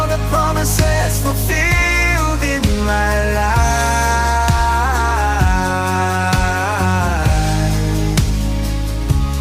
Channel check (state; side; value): identical; both; correlation 1.00